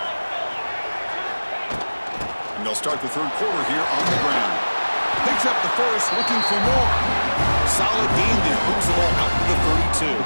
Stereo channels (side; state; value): both; inverted; correlation -1.00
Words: And they'll start the third quarter here on the ground. Picks up the first, looking for more. Solid gain there. Moves the ball out to the 32.